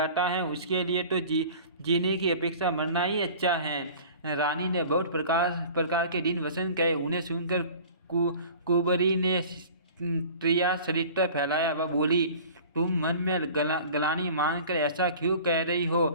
है, उसके लिए तो जीने की अपेक्षा मरना ही अच्छा है। रानी ने बहुत प्रकार के दिन वसन कहे। उन्हें सुनकर कुबरी ने त्रिया चरित्र फैलाया। वह बोली, तुम मन में गलानी मानकर ऐसा क्यों कह रही हो?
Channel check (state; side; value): inverted; both; correlation -0.43